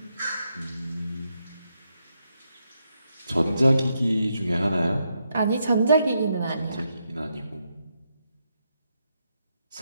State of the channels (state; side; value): inverted; both; correlation -0.81